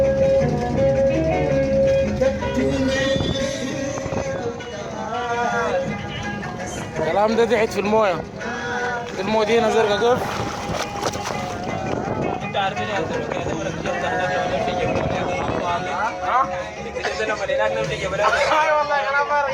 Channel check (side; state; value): both; identical; correlation 1.00